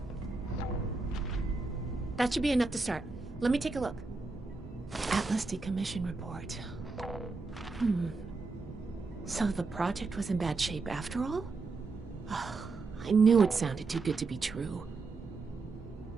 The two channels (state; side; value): quieter; left; 3.9 dB